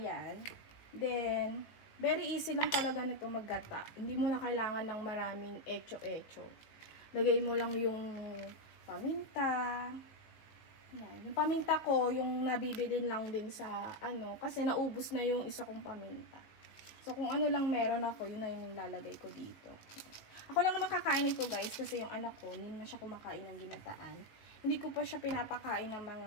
Then, very easy lang talaga nito maggata. Hindi mo na kailangan ng maraming echo-echo. Lagay mo lang yung paminta. Ayan. Yung paminta ko, yung nabibili lang din sa kasi naubos na yung isa kong paminta. So, kung ano lang meron ako, yun na yung nilalagay ko dito. Ako lang naman kakain ito guys kasi yung anak ko, hindi na siya kumakain ng ginataan. Hindi ko pa siya pinapakain ng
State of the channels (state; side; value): late; right; 19 ms